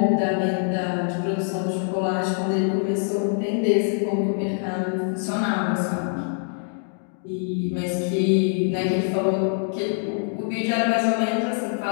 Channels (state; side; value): silent; right; 62 dB below the other